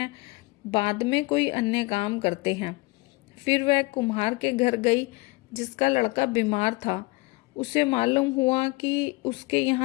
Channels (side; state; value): right; quieter; 24.1 dB